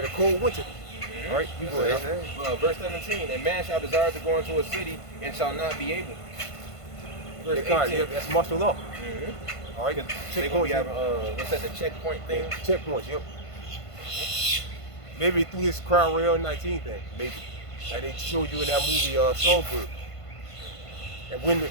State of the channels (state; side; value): late; right; 1.5 ms